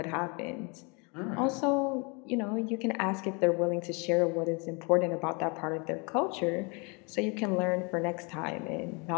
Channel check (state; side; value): quieter; right; 31.5 dB